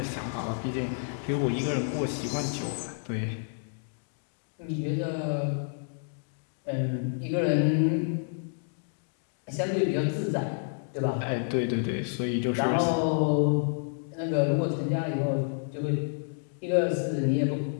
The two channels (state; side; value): silent; right; digital silence